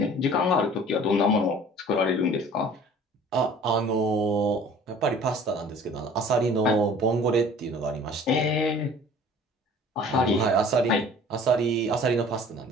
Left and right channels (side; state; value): both; normal; correlation 0.48